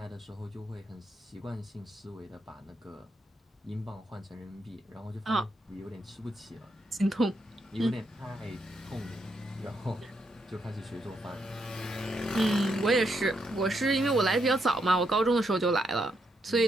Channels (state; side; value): normal; both; correlation 0.79